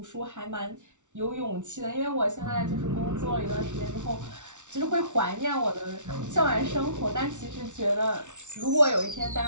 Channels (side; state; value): left; late; 0.85 ms